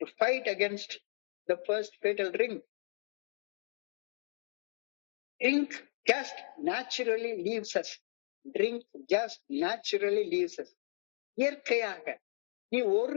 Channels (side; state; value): right; silent; digital silence